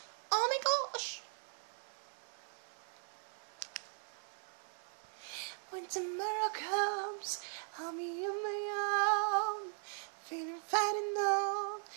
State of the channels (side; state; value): left; silent; 52 dB below the other